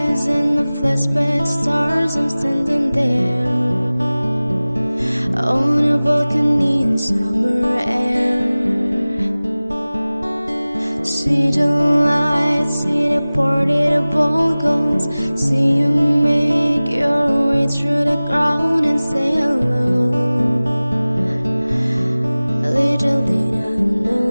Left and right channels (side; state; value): both; inverted; correlation -0.98